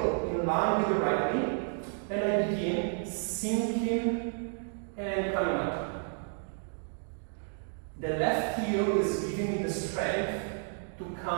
in line with the right knee, and I begin sinking and coming up. The left heel is giving me the strength to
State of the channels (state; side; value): silent; left; 57 dB below the other